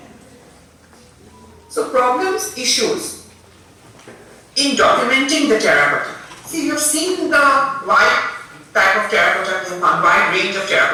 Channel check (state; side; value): identical; both; correlation 1.00